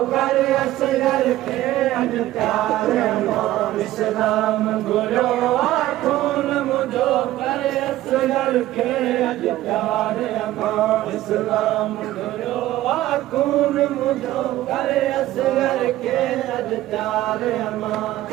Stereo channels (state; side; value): quieter; left; 15.1 dB